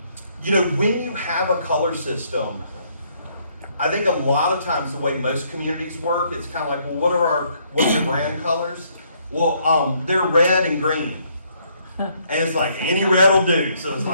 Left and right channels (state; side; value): inverted; both; correlation -0.68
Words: you have a color system, I think a lot of times the way most communities work, it's kind of like, well, what's your brand colors? Well, they're red and green. And it's like any red will do. So it's